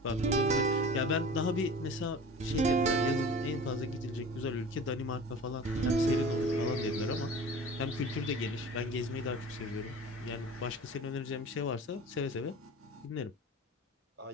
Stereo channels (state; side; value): normal; both; correlation 0.39